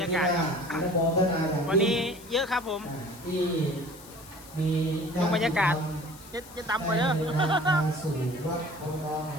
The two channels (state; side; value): noise; left; hiss, 19 dB below the sound